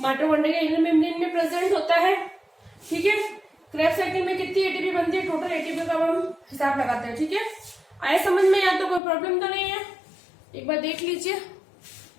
माइटोकॉन्ड्रिया के इनर मेम्ब्रेन में प्रेजेंट होता है, ठीक है। क्रेब्स साइकिल में कितनी ATP बनती है? टोटल ATP का हम हिसाब लगाते हैं, ठीक है। आए समझ में? यहाँ तो कोई प्रॉब्लम तो नहीं है, एक बार देख लीजिए,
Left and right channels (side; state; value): right; drops out; at 9.0 s